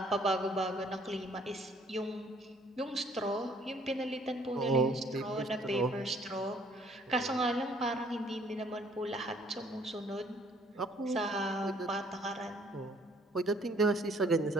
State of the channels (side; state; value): both; normal; correlation 0.61